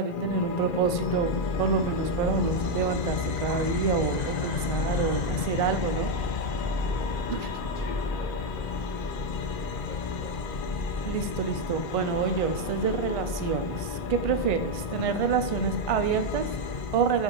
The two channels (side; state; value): right; late; 1.5 ms